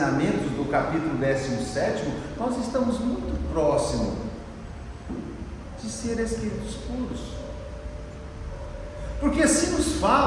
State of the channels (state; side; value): identical; both; correlation 1.00